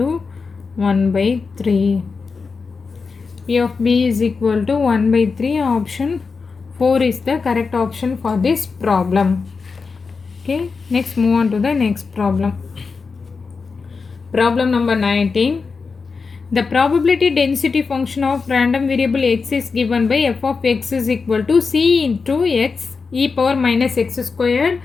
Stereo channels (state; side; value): quieter; right; 4.8 dB